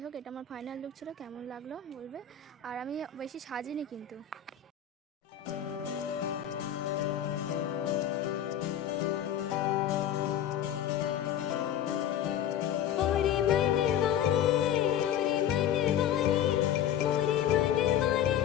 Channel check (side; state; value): right; quieter; 9.8 dB